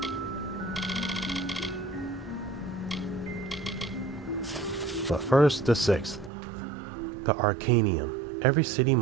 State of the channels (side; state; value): left; drops out; at 6.3 s